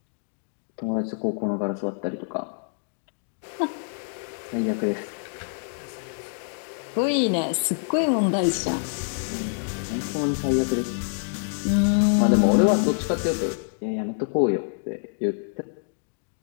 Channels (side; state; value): right; silent; digital silence